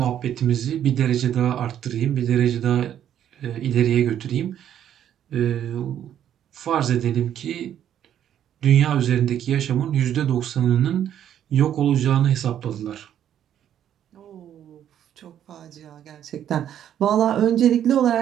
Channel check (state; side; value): quieter; left; 10.3 dB